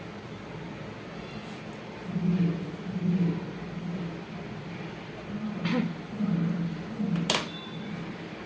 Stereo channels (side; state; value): both; identical; correlation 1.00